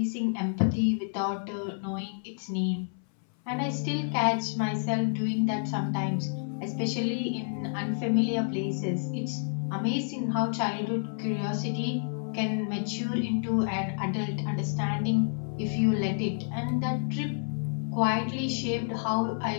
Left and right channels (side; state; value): right; silent; 58 dB below the other